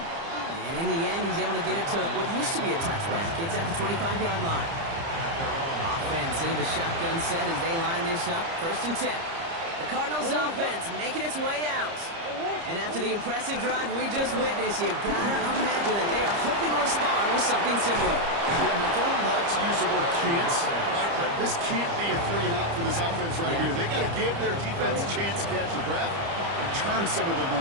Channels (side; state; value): left; late; 30 ms